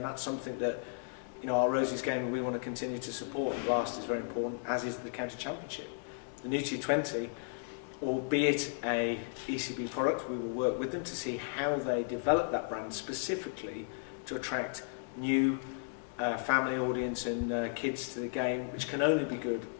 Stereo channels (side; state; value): right; silent; digital silence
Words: that's something that our Roses game we want to continue to support. The Blast is very important, as is the County Championship. The new T20, albeit a ECB product, we will work with them to see how they develop that brand specifically to attract new family audience and kids to the game, which can only be good